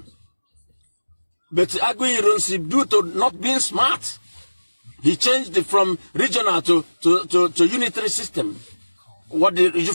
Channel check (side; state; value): both; inverted; correlation -1.00